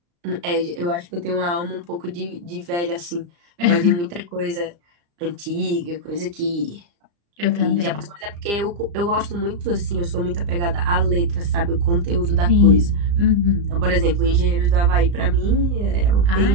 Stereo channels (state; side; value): late; left; 35 ms